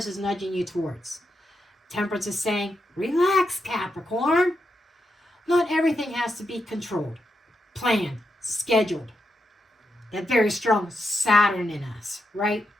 is nudging you towards. Temperance is saying, relax, Capricorn. Not everything has to be controlled, planned, scheduled. That very strong Saturn in us, right?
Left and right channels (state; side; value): normal; both; correlation 0.84